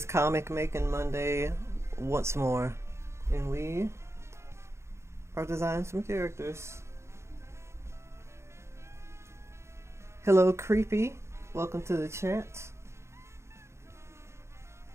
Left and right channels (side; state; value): left; late; 0.13 ms